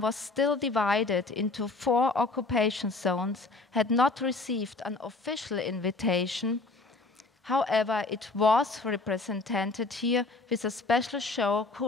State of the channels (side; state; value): right; quieter; 3.6 dB